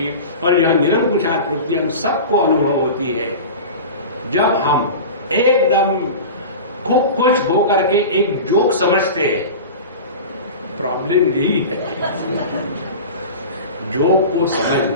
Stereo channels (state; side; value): inverted; both; correlation -0.32